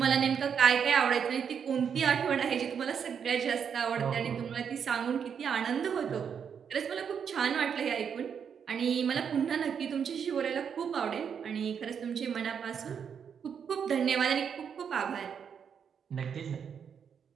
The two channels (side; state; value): left; quieter; 7.3 dB